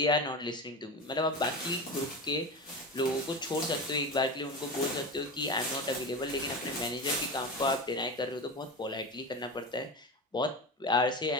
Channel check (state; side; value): normal; both; correlation 0.25